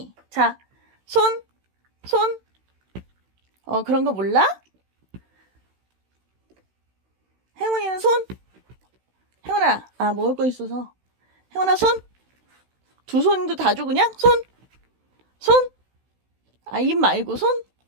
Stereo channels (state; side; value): late; left; 16 ms